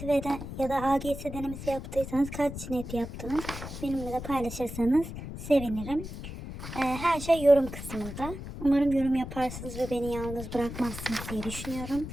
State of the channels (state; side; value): noise; left; rumble, 9 dB below the sound